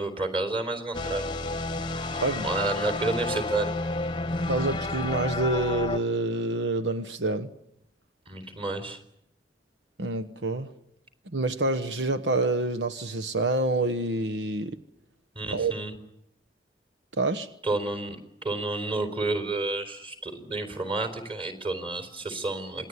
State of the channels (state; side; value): normal; both; correlation 0.25